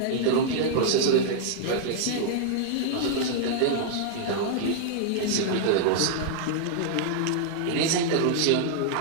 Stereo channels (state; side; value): different; both; correlation -0.01